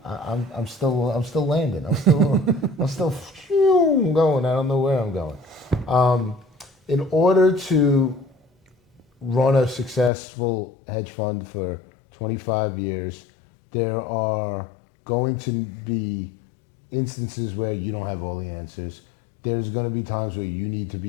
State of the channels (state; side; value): drops out; right; at 10.1 s